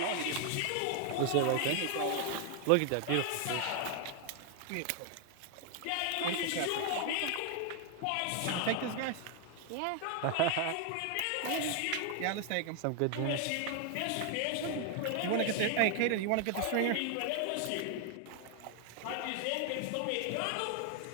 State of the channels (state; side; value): different; both; correlation 0.00